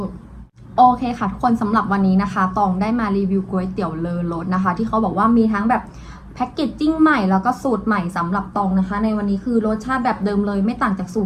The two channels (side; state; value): both; identical; correlation 1.00